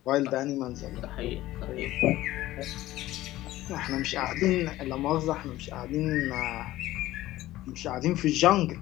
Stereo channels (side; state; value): right; quieter; 16.0 dB